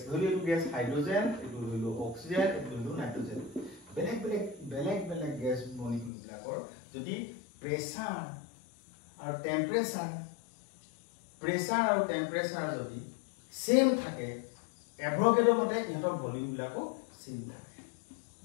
ধৰি এটো গ্যাস হাইড্ৰোজেন এটো হলো অক্সিজেন এটো হলো নাইট্ৰোজেন বেলেগ গ্যাস মলিকিউল বিলাকৰ যদি প্ৰেসাৰ আৰু টেম্পাৰেচাৰ যদি সেম থাকে এভোগাড্ৰ মতে ইহঁতৰ ভলিউম বিলাকো সেম থাকে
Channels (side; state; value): right; drops out; at 6.1 s